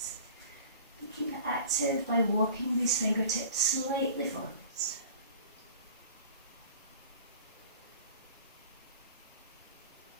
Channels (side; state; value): both; inverted; correlation -0.44